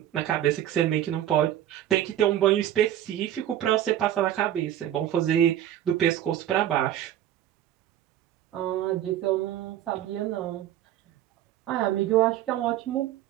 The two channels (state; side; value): quieter; left; 11.8 dB